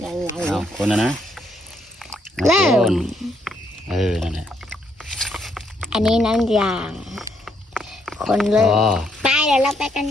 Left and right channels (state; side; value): normal; both; correlation 0.74